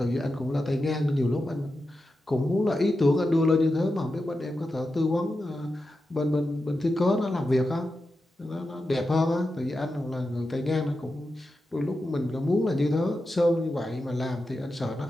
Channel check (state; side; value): normal; both; correlation 0.90